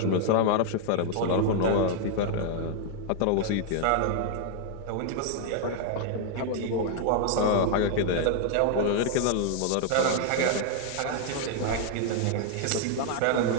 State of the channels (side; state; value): both; different; correlation 0.00